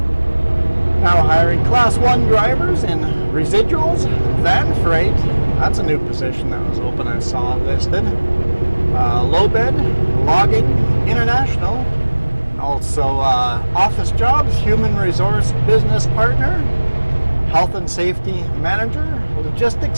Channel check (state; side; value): inverted; both; correlation -1.00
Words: Now hiring Class 1 drivers in residuals, van freight. That's a new position that was open, I saw listed. Low bed, logging, international. Also office jobs, human resource business partner, health and safety manager,